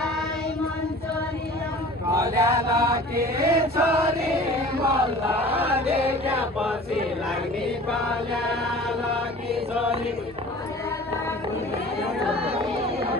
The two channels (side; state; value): both; normal; correlation 0.43